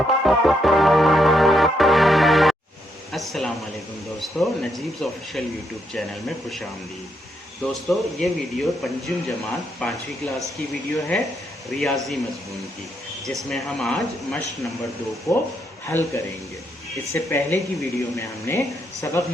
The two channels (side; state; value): both; normal; correlation 0.77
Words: वालेकुम दोस्तों, नजीब्स ऑफिशियल यूट्यूब चैनल में खुशामदीद। दोस्तों, ये वीडियो पंजुम जमात 5वीं क्लास की वीडियो है रियाजी मज़मून की, जिसमें हम आज मश्क नंबर 2 को हल करेंगे। इससे पहले की वीडियो में हमने सबक